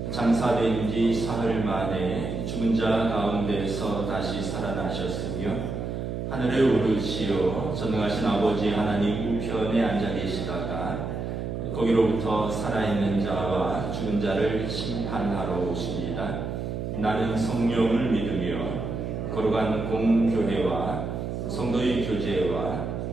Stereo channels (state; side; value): noise; right; hum, 4 dB below the sound